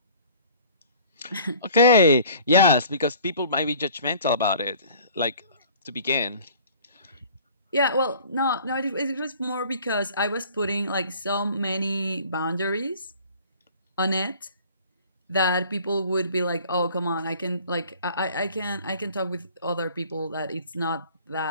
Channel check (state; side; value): inverted; both; correlation -0.50